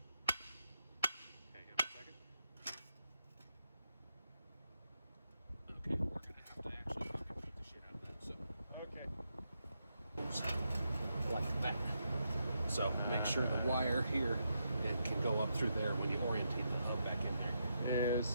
Hang on a second. Okay, we're gonna have to actually fucking beat the shit out of that. So Okay. like that. So make sure the wire here it can go up through there when you orientate the hub back in there. Yes,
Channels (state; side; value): inverted; both; correlation -0.83